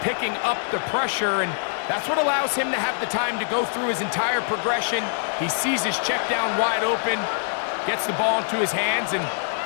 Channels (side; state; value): right; silent; 63 dB below the other